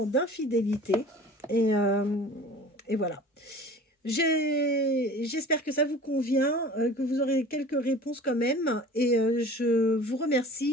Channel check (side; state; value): both; normal; correlation 0.42